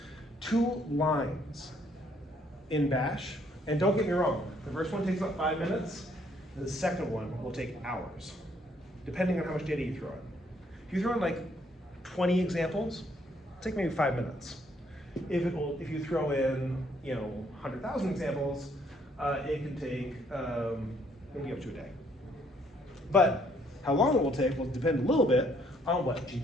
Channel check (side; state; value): both; normal; correlation 0.67